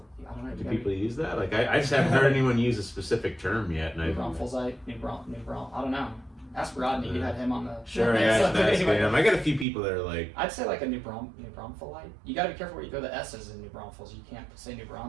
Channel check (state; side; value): drops out; left; at 9.7 s